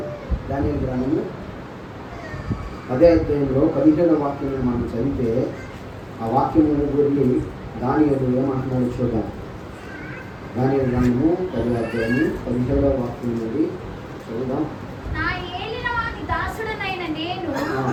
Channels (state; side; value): identical; both; correlation 1.00